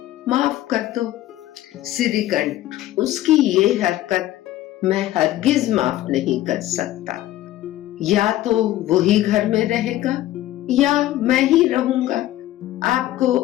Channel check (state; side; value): quieter; right; 14.5 dB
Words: माफ कर दो। श्रीकंठ, उसकी ये हरकत मैं हरगिज माफ नहीं कर सकता। या तो वही घर में रहेगा या मैं ही रहूंगा। आपको